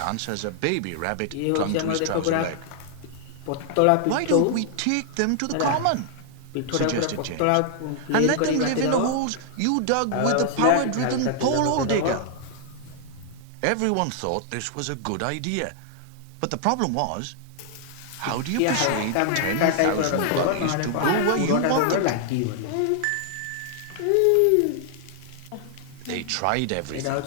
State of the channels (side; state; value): both; different; correlation -0.01